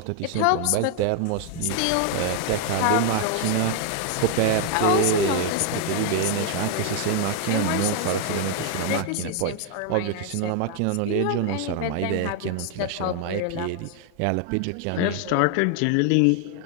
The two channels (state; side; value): different; both; correlation 0.00